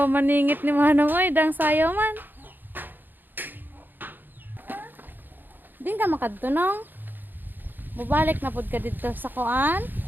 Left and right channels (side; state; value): left; late; 0.091 ms